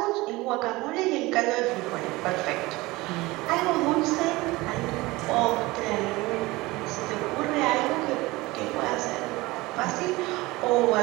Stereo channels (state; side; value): quieter; left; 21.0 dB